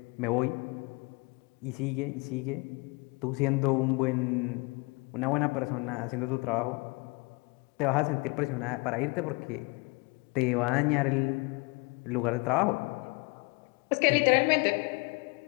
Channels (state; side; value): quieter; right; 28.5 dB